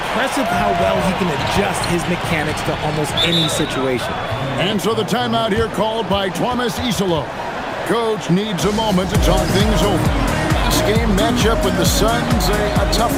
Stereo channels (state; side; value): identical; both; correlation 1.00